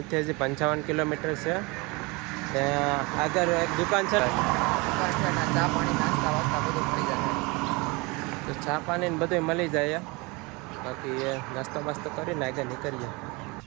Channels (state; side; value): quieter; left; 26.3 dB